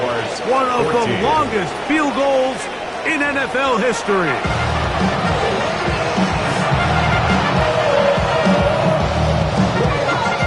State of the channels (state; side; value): identical; both; correlation 1.00